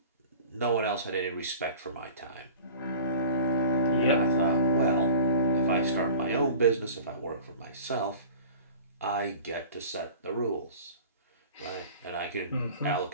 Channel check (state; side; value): inverted; both; correlation -0.41